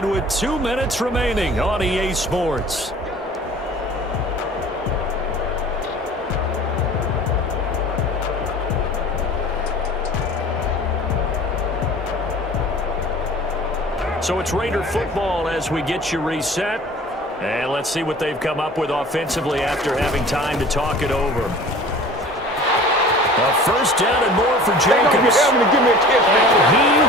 with 2 minutes remaining on EA Sports. So it's Raider football as we get you reset. And let's see what they've come up with offensively after having time to talk it over. A first down and more for Jacobs. And he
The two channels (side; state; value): both; normal; correlation 0.44